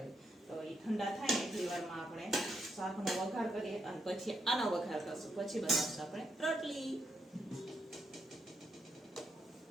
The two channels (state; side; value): normal; both; correlation 0.80